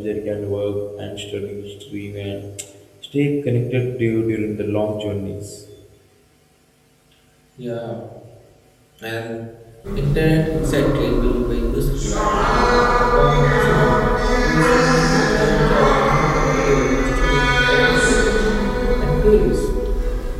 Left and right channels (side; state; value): both; identical; correlation 1.00